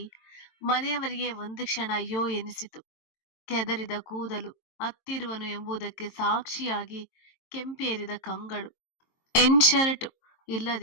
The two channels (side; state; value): right; late; 22 ms